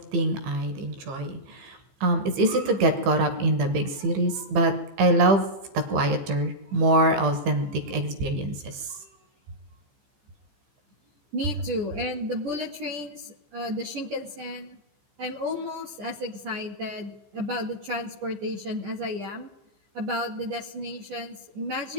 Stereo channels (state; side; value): late; left; 15 ms